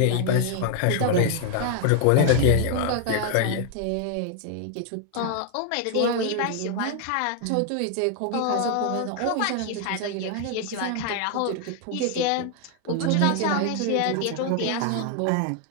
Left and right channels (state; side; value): different; both; correlation 0.00